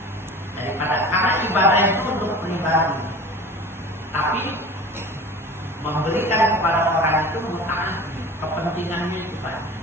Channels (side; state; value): both; normal; correlation 0.39